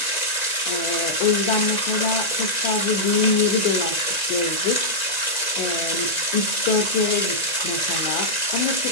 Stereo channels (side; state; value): right; late; 1.9 ms